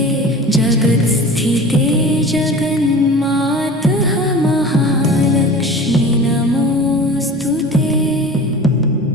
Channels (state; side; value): normal; both; correlation 0.37